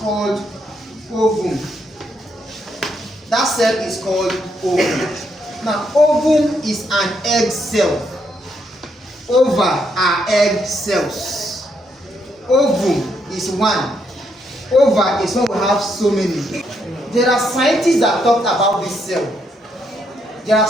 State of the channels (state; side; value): normal; both; correlation 0.76